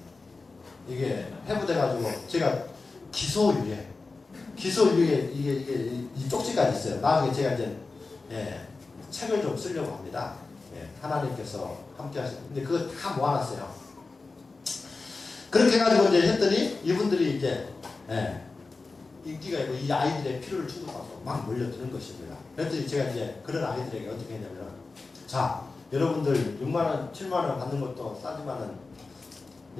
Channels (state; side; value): quieter; right; 3.8 dB